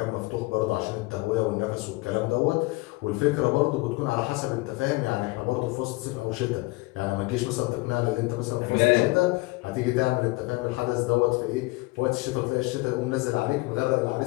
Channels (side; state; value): right; quieter; 23.5 dB